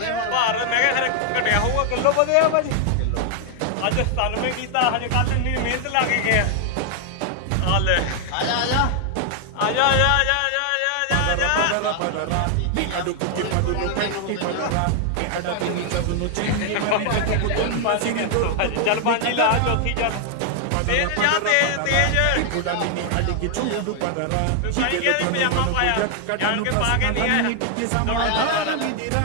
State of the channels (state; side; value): different; both; correlation 0.00